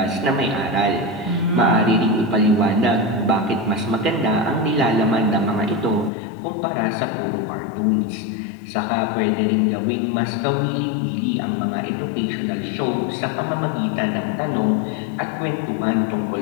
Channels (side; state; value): right; drops out; at 6.1 s